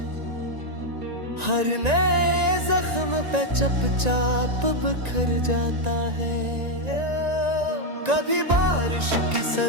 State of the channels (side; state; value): left; late; 1.9 ms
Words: हर नए जख्म पे चपचाप बिखर जाता है। कभी बारिश की